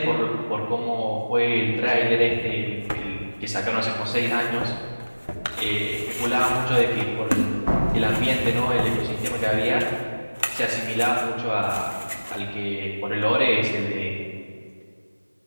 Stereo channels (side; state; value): both; inverted; correlation -1.00